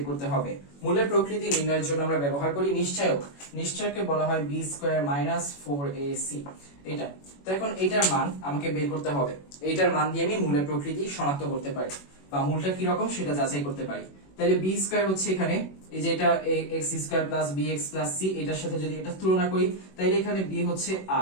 করতে হবে। মূলের প্রকৃতি নির্ণয়ের জন্য আমরা ব্যবহার করি নিশ্চয়ক। নিশ্চয়ককে বলা হয় b স্কয়ার মাইনাস 4ac। এটা তো এখন এইটার মান আমাকে বের করতে হবে। এইটার মান দিয়ে আমি মূলের প্রকৃতি শনাক্ত করতে পারি বা মূলটা কি রকম সেটা যাচাই করতে পারি। তাহলে b স্কয়ার হচ্ছে এখানে এই যে এটা x square plus bx plus c, এটার সাথে যদি এটা তুলনা করি তাহলে এখানে b হচ্ছে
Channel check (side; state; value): right; late; 21 ms